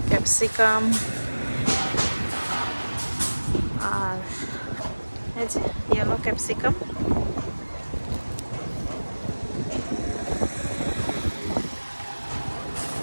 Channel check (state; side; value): inverted; both; correlation -1.00